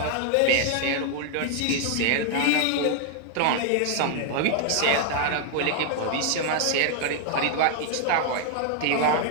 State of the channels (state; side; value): different; both; correlation 0.00